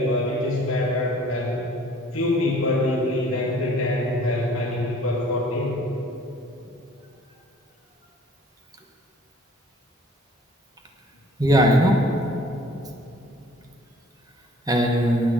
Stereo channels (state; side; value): normal; both; correlation 0.53